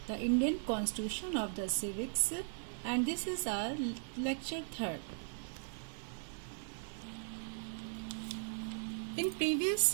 the Indian Constitution of the Civics, and this is our lecture 3rd. In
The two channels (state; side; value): silent; left; digital silence